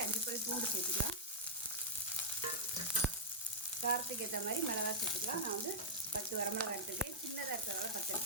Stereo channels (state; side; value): normal; both; correlation -0.06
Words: 5 பல் பூண்டு சேர்த்துக்கலாம். காரத்துக்கு ஏற்ற மாதிரி மிளகாய் சேர்த்துக்கலாம். நான் 10 வரமிளகாய் எடுத்துருக்கேன். சின்னதாக இருக்கிறதால 10